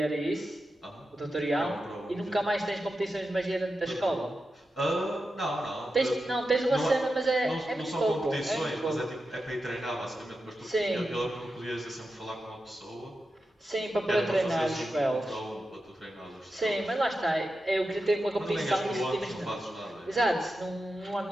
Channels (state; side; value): normal; both; correlation 0.90